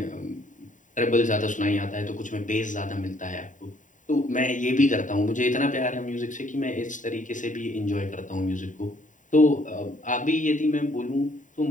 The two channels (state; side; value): late; right; 0.37 ms